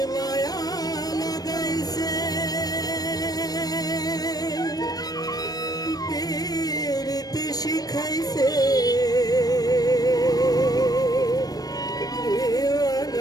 মায়া লাগাইছে পীরতি শিখাইছে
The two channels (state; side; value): late; right; 0.19 ms